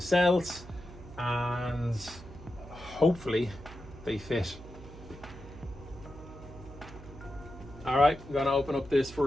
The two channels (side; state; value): right; noise; hum, 16 dB below the sound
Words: cells, and hopefully they fit. All right, I'm gonna open up this